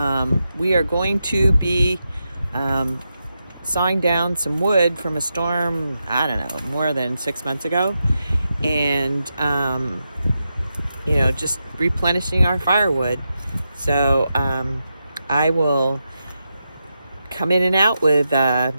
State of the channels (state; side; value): inverted; both; correlation -0.87